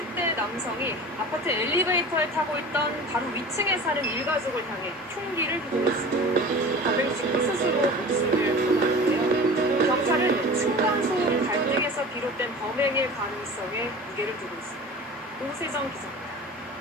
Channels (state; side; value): normal; both; correlation 0.37